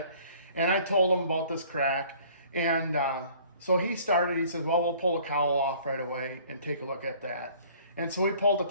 And I told him about this crack. And so he said, well, we'll pull the cowl off right away and take a look at that. And so we pulled the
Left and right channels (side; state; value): both; inverted; correlation -0.54